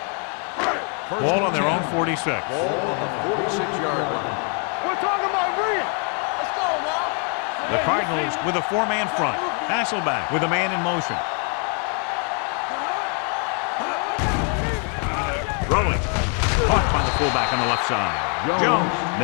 Ball on their own 46. Ball on the 46-yard line. We're talking about Rhea. Let's go now. The Cardinals with a 4-man front. Hasselback with a man in motion. Throwing. Caught by the fullback on the left side. Jones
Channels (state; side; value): quieter; right; 39.6 dB